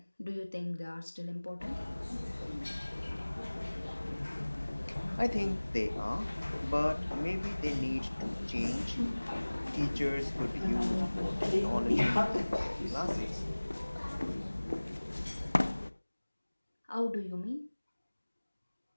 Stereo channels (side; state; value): both; inverted; correlation -1.00